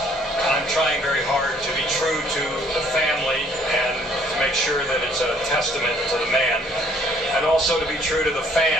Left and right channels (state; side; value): normal; both; correlation 0.61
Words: I'm trying very hard to be true to the family and to make sure that it's a testament to the man, and also to be true to the